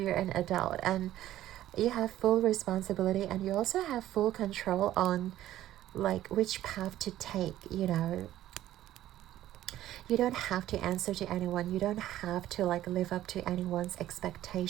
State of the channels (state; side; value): quieter; left; 13.6 dB